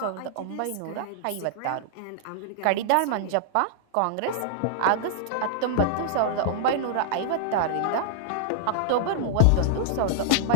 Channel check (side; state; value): both; different; correlation -0.01